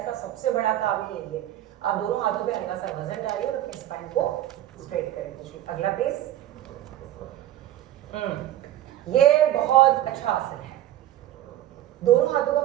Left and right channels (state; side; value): quieter; left; 13.1 dB